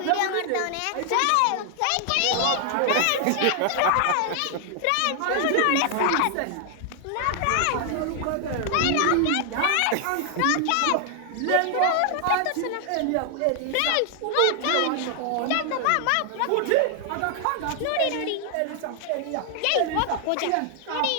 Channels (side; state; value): both; different; correlation 0.00